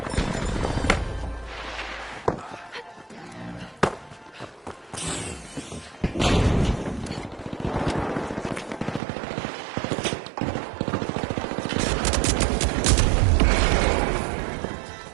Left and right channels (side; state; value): left; drops out; at 9.0 s